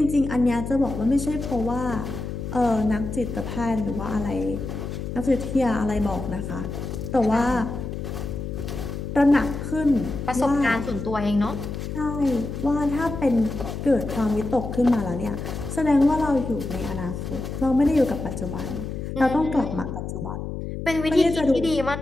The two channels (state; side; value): noise; left; hum, 6 dB below the sound